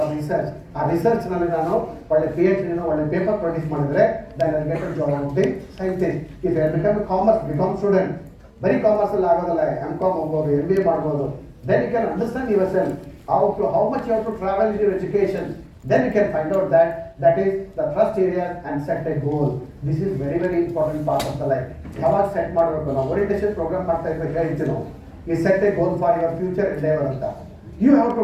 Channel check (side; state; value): both; identical; correlation 1.00